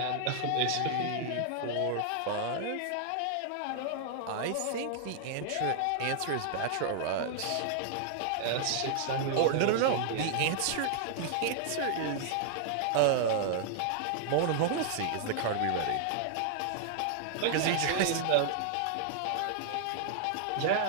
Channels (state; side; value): different; both; correlation -0.01